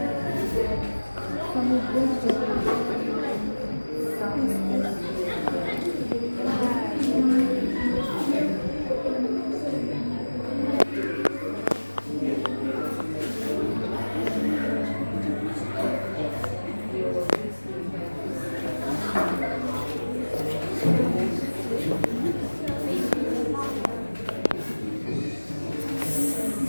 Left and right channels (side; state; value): both; inverted; correlation -1.00